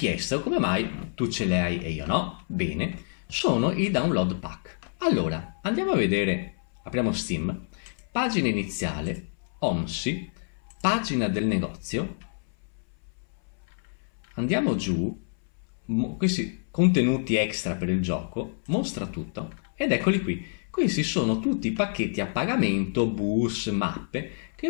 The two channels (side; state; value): right; silent; 60 dB below the other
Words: come mai tu ce le hai e io no. Bene, sono i download pack. Allora, andiamo a vedere, apriamo Steam, pagina iniziale, OMSI, pagina del negozio, andiamo giù, questi contenuti extra per il gioco, mostra tutto ed eccoli qui. Questi sono tutti i pacchetti a pagamento, bus, mappe che